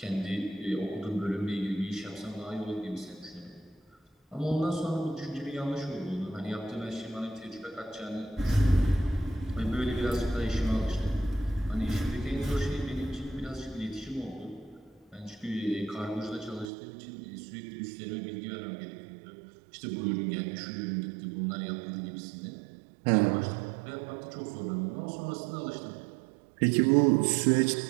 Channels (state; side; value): drops out; left; at 16.7 s